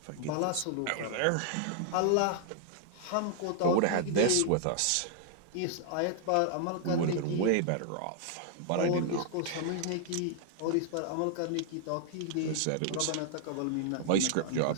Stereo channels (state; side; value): different; both; correlation 0.00